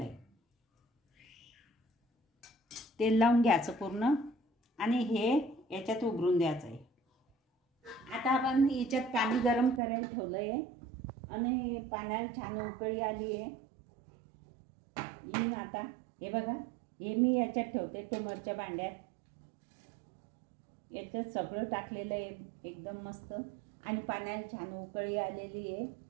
आहे. तेल लावून घ्यायचं पूर्ण आणि हे याच्यात उघडून द्यायचं आहे. आता आपण याच्यात पाणी गरम करायला ठेवलं आहे आणि पाण्याला छान उकळी आली आहे. आता हे बघा, हे मी याच्यात ठेवते ट्युमरच्या भांड्यात. याच्यात सगळं टाकलेलं आहे एकदम मस्त आणि पाण्याला छान उकळी आलेली आहे.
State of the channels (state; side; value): drops out; left; at 9.8 s